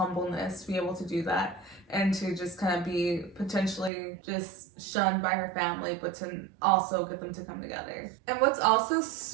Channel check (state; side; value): drops out; left; at 3.9 s